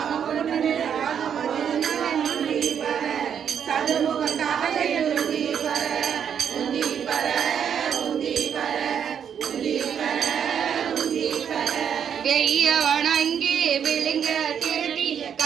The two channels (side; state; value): left; quieter; 8.2 dB